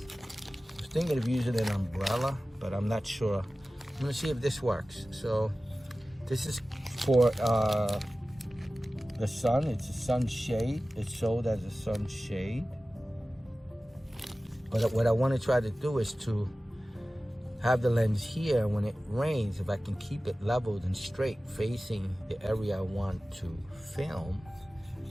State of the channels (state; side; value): normal; both; correlation 0.96